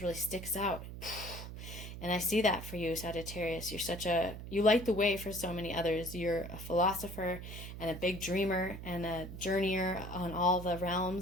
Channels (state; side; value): noise; right; hum, 10 dB below the sound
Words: really sticks out. And I see that for you, Sagittarius. You light the way for so many others. You're a philosopher and a big dreamer and a journeyer on all the